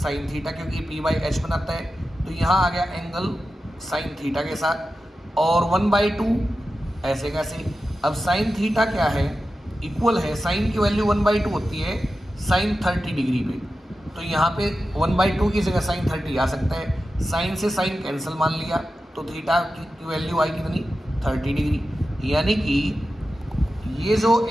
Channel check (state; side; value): normal; both; correlation 0.92